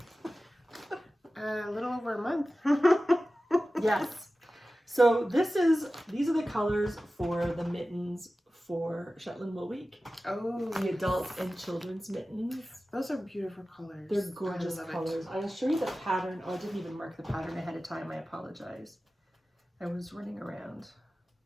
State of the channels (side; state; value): both; normal; correlation 0.95